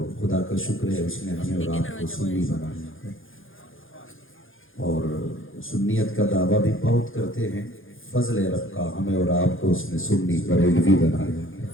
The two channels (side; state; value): right; late; 0.59 ms